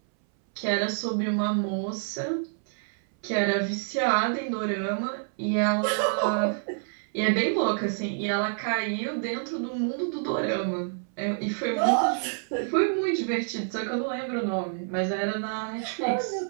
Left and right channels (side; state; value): left; silent; 60 dB below the other